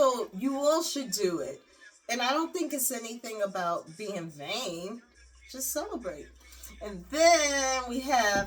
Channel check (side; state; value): both; identical; correlation 1.00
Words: you all should do it. And I don't think it's anything about being vain. Just celebrate. And then we